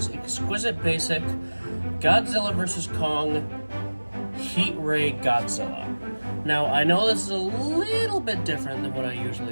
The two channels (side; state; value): both; inverted; correlation -1.00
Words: Exquisite Basic Godzilla vs. Kong Heat Ray Godzilla. Now, I know this is a little bit different than what I